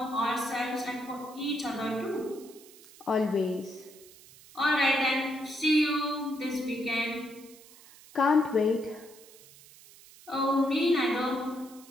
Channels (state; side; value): noise; right; hiss, 22 dB below the sound